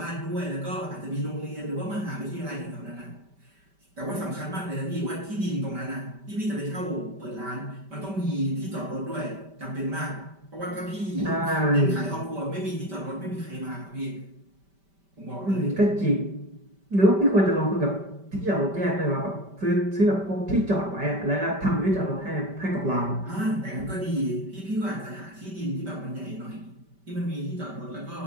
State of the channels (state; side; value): late; left; 5.1 ms